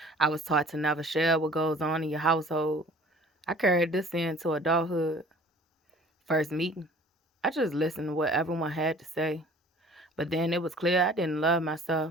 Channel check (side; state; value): both; normal; correlation 0.50